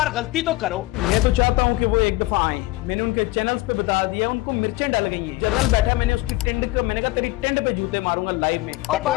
गलती तो करो। मैं तो चाहता हूँ कि वो एक दफा आए। मैंने उनके चैनल्स पे बता दिया, उनको मिर्चें डल गई हैं। जनरल बैठा, मैंने उसकी टेंड को, मैंने कहा तेरी टेंड पे जूते मारूंगा लाइव में,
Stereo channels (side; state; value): right; quieter; 19.6 dB